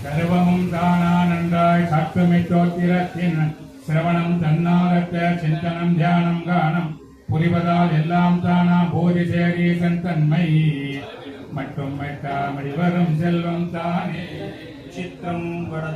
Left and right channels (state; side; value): identical; both; correlation 1.00